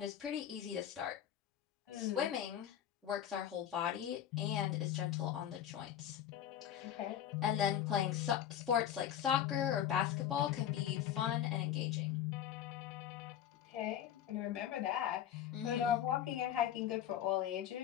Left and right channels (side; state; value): right; quieter; 10.3 dB